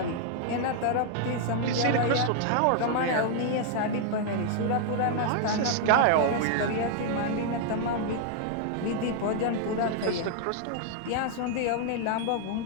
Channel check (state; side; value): different; both; correlation 0.00